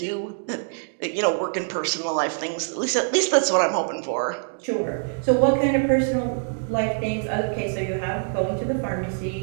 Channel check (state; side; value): silent; left; digital silence